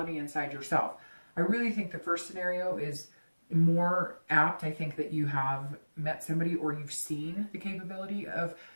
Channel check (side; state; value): both; inverted; correlation -1.00